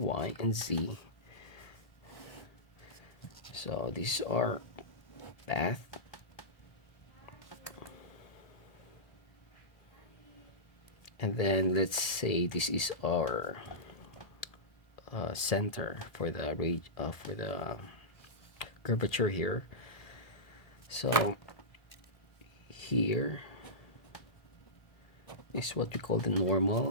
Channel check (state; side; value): late; right; 1.8 ms